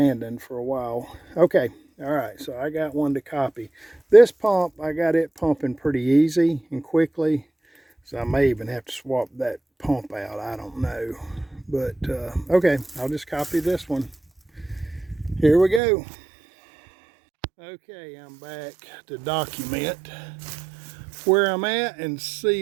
for a while. Okay, all right, so I got one to copy. This pump, I got it pumping pretty easy and quickly. So I may even have to swap that pump out. I don't know. But, okay, I'll just copy this one. Here we go. Okay, I'm back to document where I'm at and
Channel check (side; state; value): left; drops out; at 15.8 s